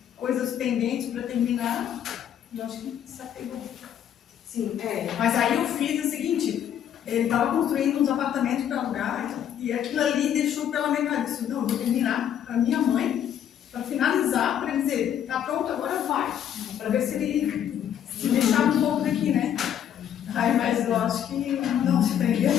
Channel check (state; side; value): quieter; right; 9.8 dB